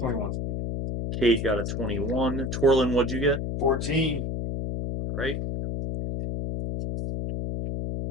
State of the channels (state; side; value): noise; left; hum, 3 dB below the sound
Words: Cade got a 21. Torlin, what'd you get? 14. All right.